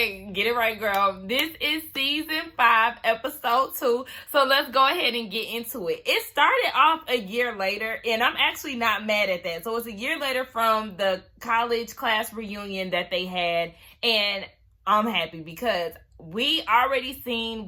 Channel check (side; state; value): both; identical; correlation 1.00